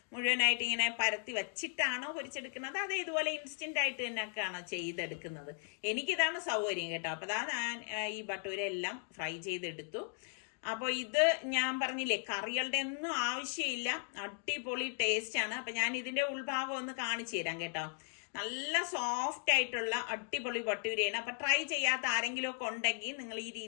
മുഴുവനായിട്ട് ഇങ്ങനെ പരത്തി വെച്ചിട്ടാണോ പൊരിച്ചെടുക്കുന്നത്? അത് ഇതുപോലെ ഇൻസ്റ്റന്റ് ആയിട്ട് തന്നെയൊക്കെയാണോ ചെയ്തെടുക്കുന്നത്? എനിക്കിതാണ് സൗകര്യം കേട്ടോ. അപ്പൊ ഞാൻ ഈ ബട്ടൂര എല്ലാം ഫ്രൈ ചെയ്തെടുത്തു. അപ്പോൾ ഇത് ഞാൻ പറഞ്ഞില്ലേ, കറികളുടെ ഒന്നും ആവശ്യമില്ല, അടിപൊളി ടേസ്റ്റ് ആണ്. അപ്പൊ ഞാൻ ഇതിന്റെ ഉൾഭാഗം ഒന്ന് കാണിച്ചു തരാം കേട്ടോ. നല്ല സോഫ്റ്റ് ആയിട്ടുള്ള അടിപൊളി ബട്ടൂരയാണ്. അപ്പൊ ട്രൈ ചെയ്യാത്ത ആരെങ്കിലും ഒക്കെ ഉണ്ടെങ്കിൽ നിങ്ങൾ ഈ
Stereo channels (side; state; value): right; silent; 53 dB below the other